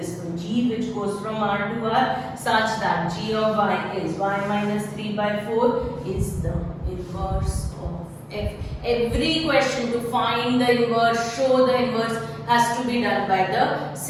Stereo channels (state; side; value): identical; both; correlation 1.00